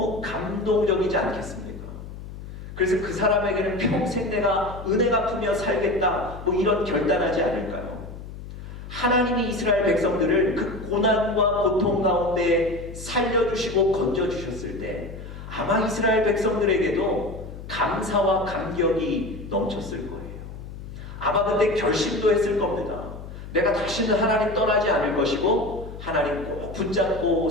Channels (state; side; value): noise; left; hum, 12 dB below the sound